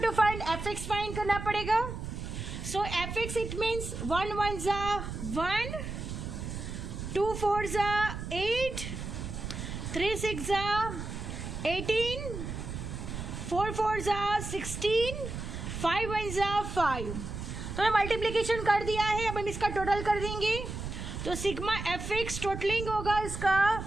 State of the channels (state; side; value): noise; right; rumble, 7 dB below the sound